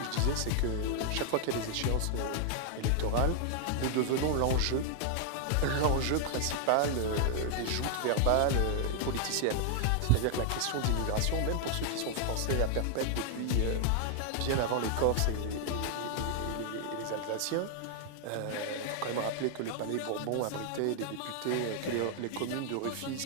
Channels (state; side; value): different; both; correlation 0.00